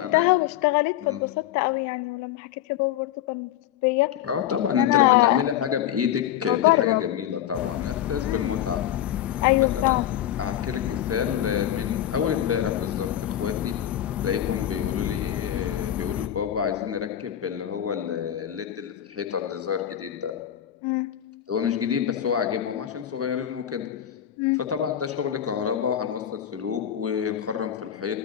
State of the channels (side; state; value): right; quieter; 11.0 dB